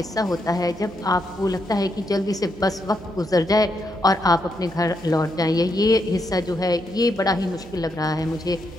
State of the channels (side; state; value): right; noise; hum, 19 dB below the sound